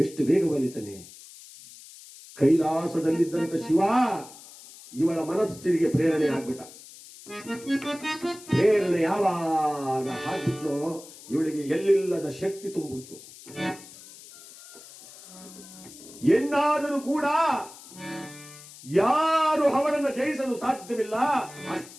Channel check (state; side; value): noise; left; hiss, 18 dB below the sound